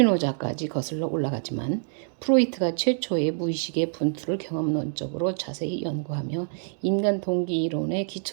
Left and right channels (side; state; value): left; silent; digital silence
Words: 거슬러 올라가지만 프로이트가 최초의 무의식의 분투를 경험론적으로 자세히 연구하며 인간 동기 이론의